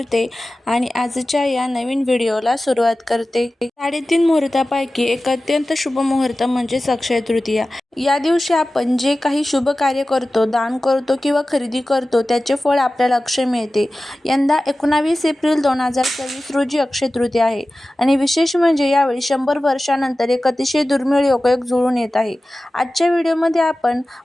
आणि आजच्या या नवीन व्हिडिओला सुरुवात करते. 3:30 मुहूर्तापैकी एक अत्यंत शुभ मुहूर्त म्हणजे अक्षय तृतीया. या दिवशी आपण जे काही शुभ कार्य करतो, दान करतो किंवा खरेदी करतो त्याचे फळ आपल्याला अक्षय मिळते. यंदा 19 एप्रिल 2024 रोजी अक्षय तृतीया आहे आणि विशेष म्हणजे यावेळी 100 वर्षांनंतर एक अतिशय दुर्मिळ योगायोग जुळून येत आहे. आजच्या व्हिडिओमध्ये आपण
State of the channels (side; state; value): both; normal; correlation 0.96